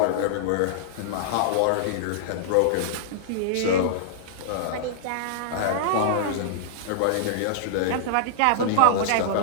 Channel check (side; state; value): both; different; correlation -0.02